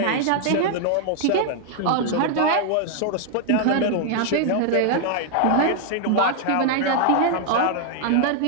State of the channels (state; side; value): different; both; correlation 0.00